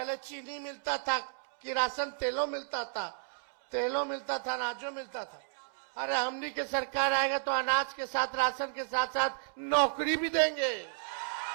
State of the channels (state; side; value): silent; left; digital silence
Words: चीनी मिलता था, किरासन तेलों मिलता था, अनाजों मिलता था। अरे हमनी के सरकार आएगा तो अनाज के साथ, राशन के साथ साथ नौकरी भी देंगे,